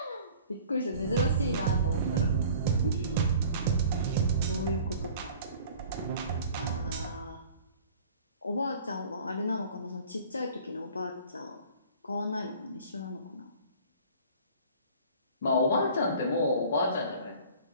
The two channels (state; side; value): inverted; both; correlation -0.47